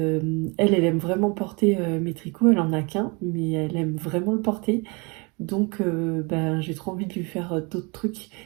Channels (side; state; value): left; quieter; 29.5 dB